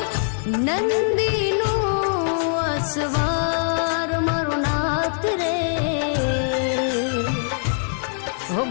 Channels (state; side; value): silent; right; 63 dB below the other